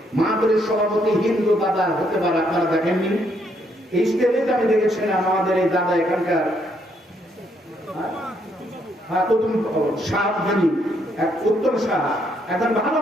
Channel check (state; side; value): normal; both; correlation 0.72